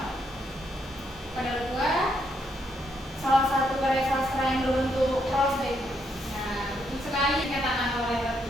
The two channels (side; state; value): both; normal; correlation 0.76